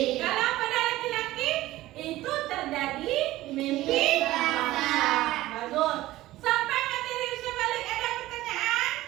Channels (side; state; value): left; quieter; 16.5 dB